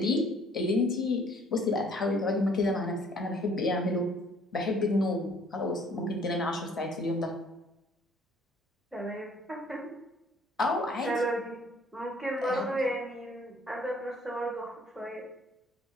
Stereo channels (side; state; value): both; normal; correlation 0.58